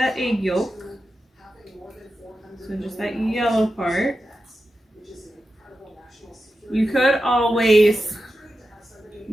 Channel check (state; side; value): normal; both; correlation 0.91